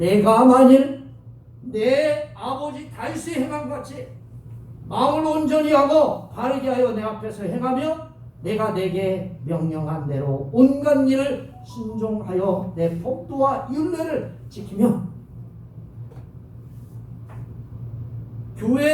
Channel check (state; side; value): identical; both; correlation 1.00